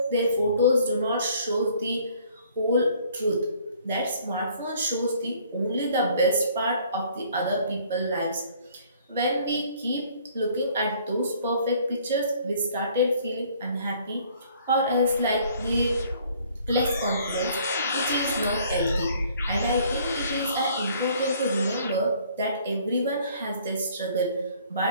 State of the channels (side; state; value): both; inverted; correlation -0.58